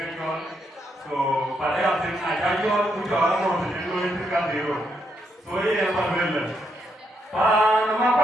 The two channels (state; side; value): normal; both; correlation 0.78